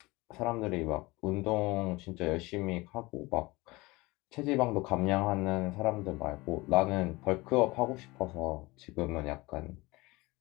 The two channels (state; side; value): quieter; right; 22.3 dB